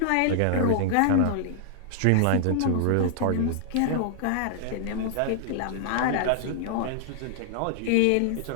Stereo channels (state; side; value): different; both; correlation -0.01